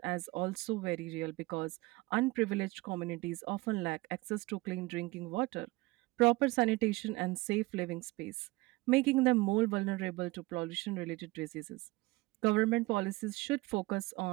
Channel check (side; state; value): left; quieter; 21.5 dB